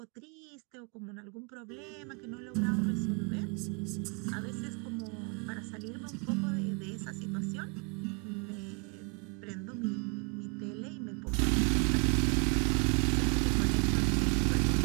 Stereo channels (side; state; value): left; quieter; 35.7 dB